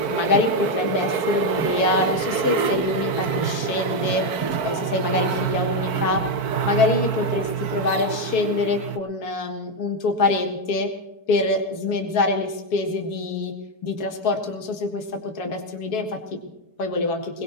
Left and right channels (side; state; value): right; late; 4.6 ms